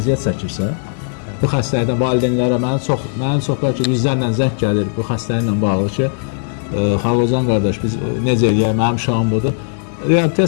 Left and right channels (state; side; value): silent; right; digital silence